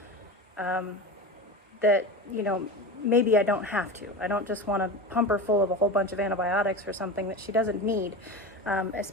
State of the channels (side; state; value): both; normal; correlation 0.26